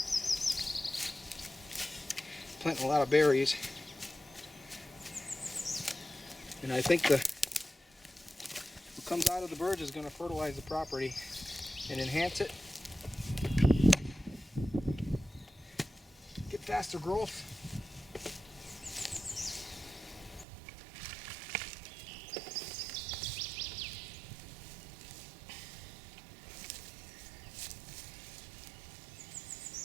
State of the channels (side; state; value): left; drops out; at 20.5 s